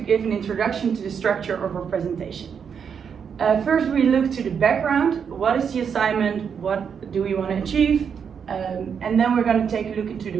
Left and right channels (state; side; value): quieter; left; 7.0 dB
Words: an introduction to the structure of our presentation. First, we look to the background. What is the assignment? What do we want to achieve? And then we're going to take a look into the